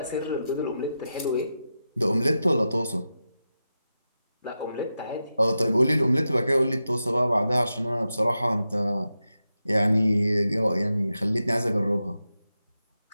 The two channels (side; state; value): both; inverted; correlation -0.90